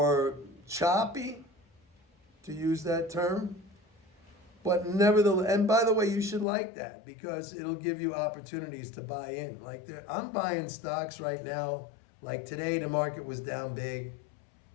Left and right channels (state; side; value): drops out; right; at 6.5 s